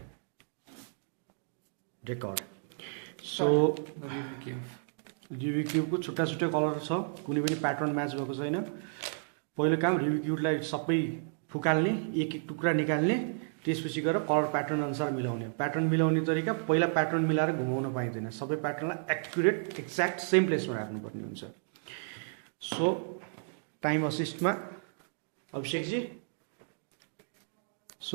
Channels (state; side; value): silent; left; digital silence